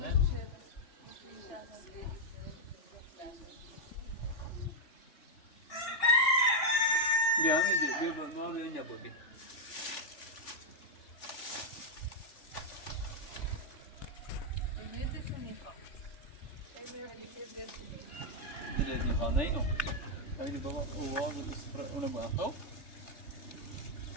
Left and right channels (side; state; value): right; late; 3.4 ms